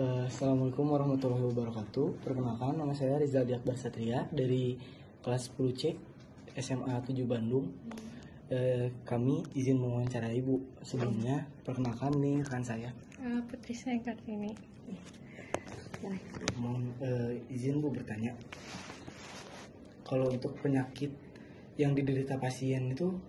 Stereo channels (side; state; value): both; identical; correlation 1.00